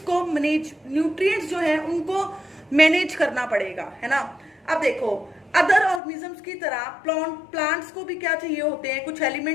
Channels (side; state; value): right; drops out; at 6.0 s